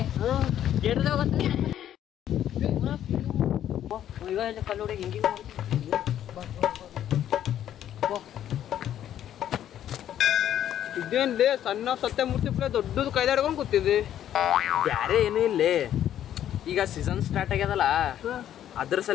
ಕೇಳಿದಾಗ ಈಗ ಕಲ್ಲೋಡಿ ಹಿಂಗೆ ಇದೇನ್ಲೇ ಸಣ್ಣ ಸತ್ಯಮೂರ್ತಿ ಪ್ಲೇ ದೊಡ್ಡದು ಕೈದಾಡ್ಕೊಂಡು ಕೂತಿದ್ದೆ. ಬ್ಯಾರೆ ಏನೂ ಇಲ್ಲೇ. ಈಗ ಸೀಸನ್ ಸ್ಟಾರ್ಟ್ ಆಗ್ಯದಲ್ಲ, ಅದ್ರ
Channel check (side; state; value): right; quieter; 11.0 dB